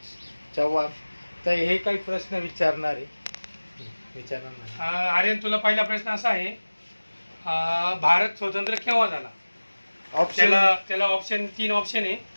चव्हाण. तर हे काही प्रश्न विचारणार आहे. आर्यन, तुला पहिला प्रश्न असा आहे, भारत स्वतंत्र केव्हा झाला? त्याला ऑप्शन 3 ऑप्शन आहे.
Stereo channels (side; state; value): both; inverted; correlation -1.00